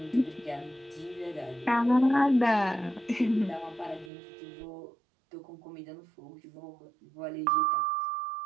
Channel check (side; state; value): left; drops out; at 4.1 s